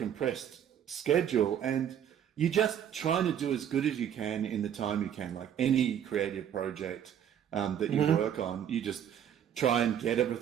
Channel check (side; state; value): left; quieter; 9.4 dB